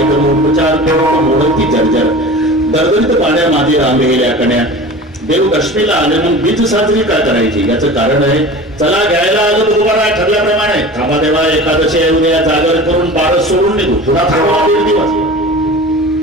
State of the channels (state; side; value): normal; both; correlation 0.37